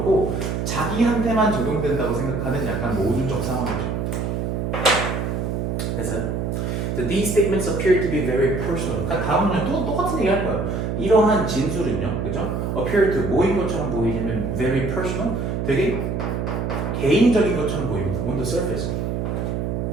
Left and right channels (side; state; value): right; noise; hum, 1 dB below the sound